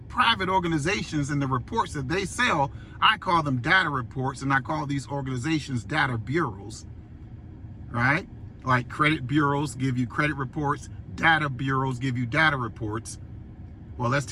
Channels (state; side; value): identical; both; correlation 1.00